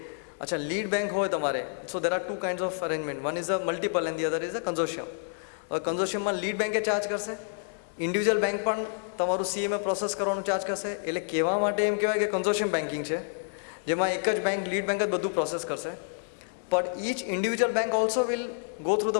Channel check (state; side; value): silent; right; digital silence